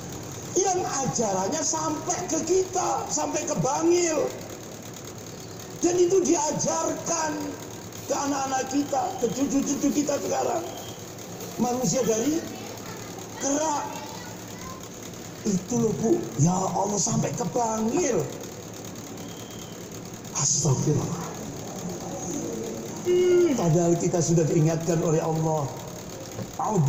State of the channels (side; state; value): both; identical; correlation 1.00